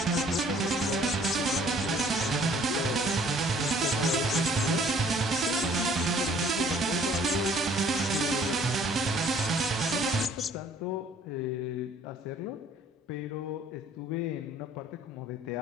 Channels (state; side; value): normal; both; correlation 0.57